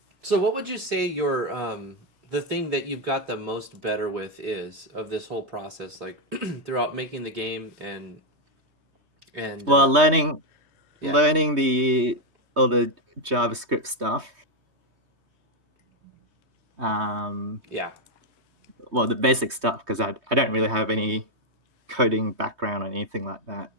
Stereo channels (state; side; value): late; left; 3.2 ms